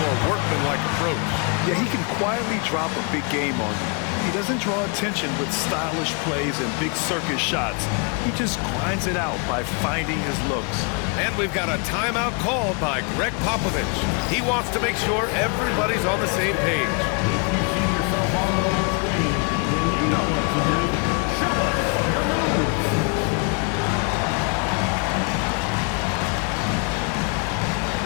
workmanlike approach. Yeah, he can quietly drop a big game on you. He doesn't draw attention with stylish plays and big circus shots. He just grinds it out by finding his looks. And we've got a timeout called by Greg Popovich. He wants to make sure everybody's on the same page. If you see yourself on the screen, then you know what to do. Show us your moves.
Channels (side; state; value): right; quieter; 35.0 dB